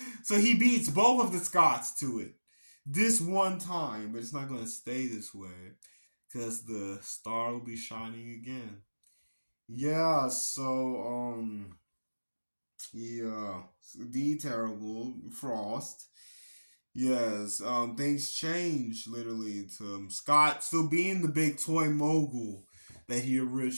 So he beats both of the Scotts to it this one time, but it's not going to stay this way because the star will be shining again. Yeah, so yeah, the terrible Frost. Yes, things change literally to Scott still being the big toy mogul that he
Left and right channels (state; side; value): inverted; both; correlation -1.00